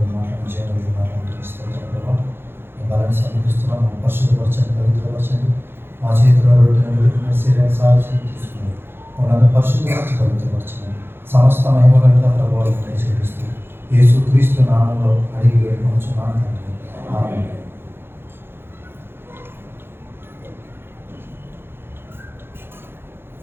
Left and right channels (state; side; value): late; left; 0.11 ms